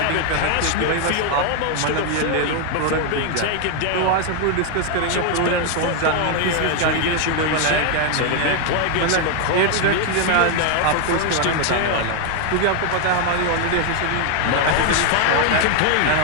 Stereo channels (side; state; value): both; different; correlation 0.01